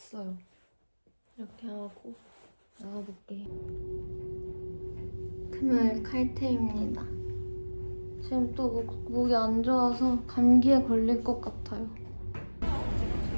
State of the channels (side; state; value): both; inverted; correlation -1.00